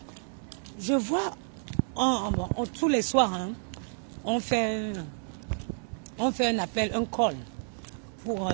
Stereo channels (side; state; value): left; silent; digital silence